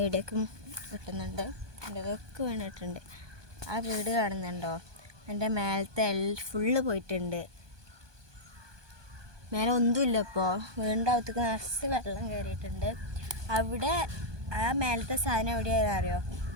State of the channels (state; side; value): late; left; 1.2 ms